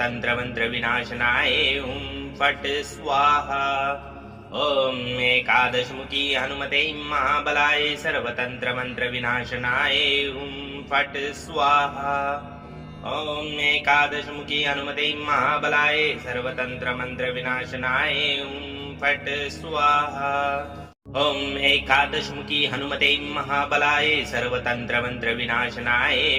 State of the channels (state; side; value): identical; both; correlation 1.00